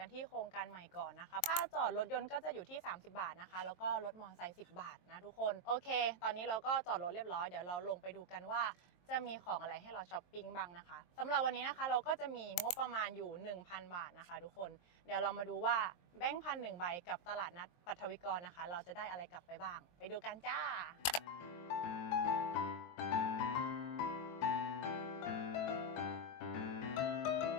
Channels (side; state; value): right; late; 23 ms